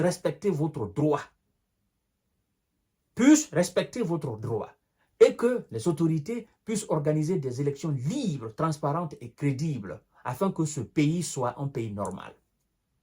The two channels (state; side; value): identical; both; correlation 1.00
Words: votre droit. Et que les autorités puissent organiser des élections libres, transparentes et crédibles afin que ce pays soit un pays normal.